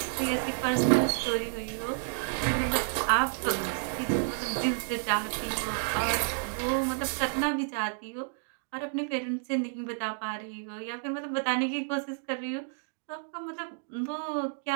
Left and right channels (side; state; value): left; silent; digital silence